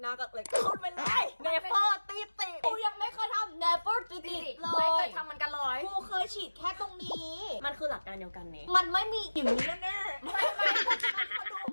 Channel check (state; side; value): inverted; both; correlation -1.00